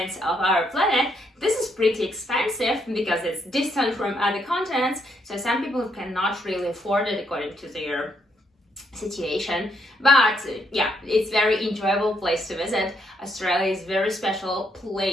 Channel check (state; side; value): normal; both; correlation 0.75